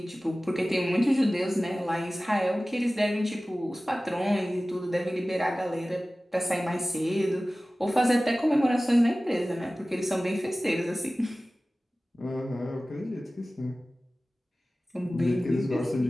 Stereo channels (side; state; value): both; normal; correlation 0.97